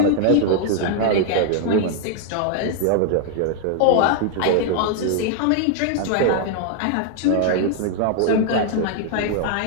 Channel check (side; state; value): both; different; correlation 0.00